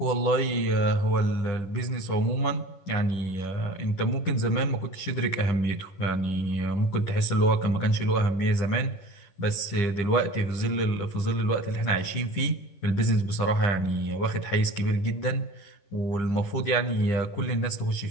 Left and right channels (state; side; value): late; right; 11 ms